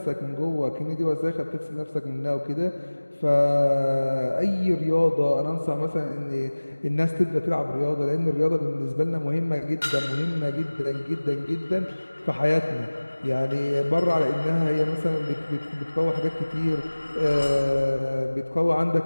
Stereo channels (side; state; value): both; inverted; correlation -1.00